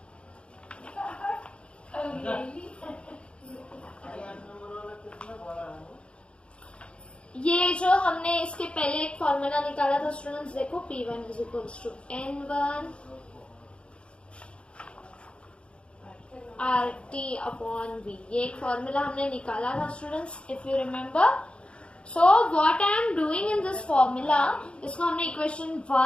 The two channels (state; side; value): late; right; 0.058 ms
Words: ये जो हमने इसके पहले एक फॉर्मूला निकाला था स्टूडेंट्स, देखो P1 is equals to N1 RT upon V, ये एक फॉर्मूला हमने निकाला था students, if you remember. So what I am doing in this formula, इसको हमने इक्वेशन